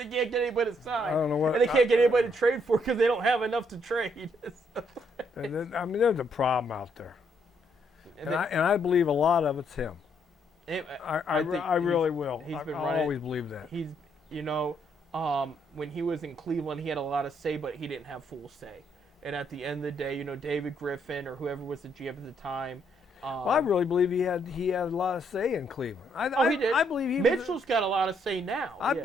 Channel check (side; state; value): both; normal; correlation 0.72